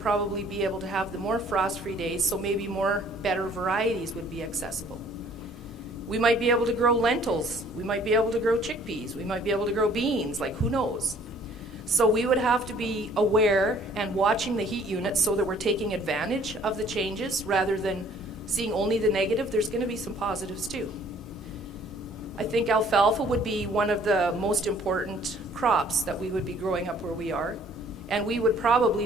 be able to have the more frost-free days, so maybe more better varieties would be accessible. We might be able to grow lentils. We might be able to grow chickpeas. We might be able to grow beans, like who knows. So we would have to be aware and watching the heat units so that we're taking advantage of the changes rather than seeing only the negative. There's going to be some positives too. I think alfalfa would be one of the most important crops that we would be growing up where we are, and we would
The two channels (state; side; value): normal; both; correlation 0.57